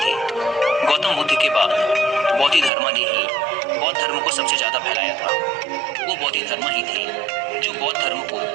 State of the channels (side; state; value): left; drops out; at 2.7 s